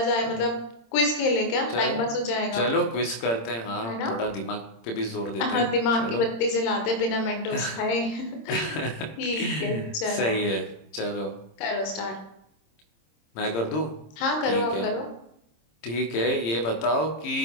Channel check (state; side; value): late; right; 26 ms